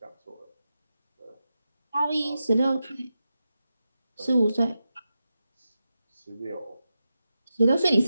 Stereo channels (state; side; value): inverted; both; correlation -0.90